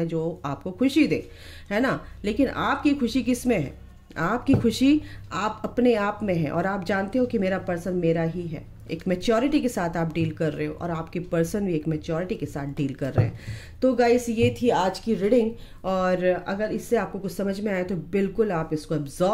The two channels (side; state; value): both; identical; correlation 1.00